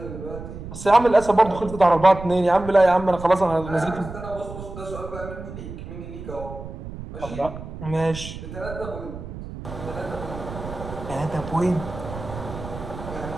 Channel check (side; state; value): right; noise; rumble, 11 dB below the sound